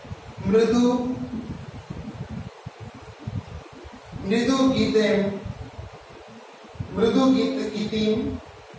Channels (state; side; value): identical; both; correlation 1.00